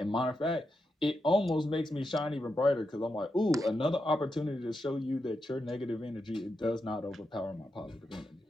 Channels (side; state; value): both; normal; correlation 0.86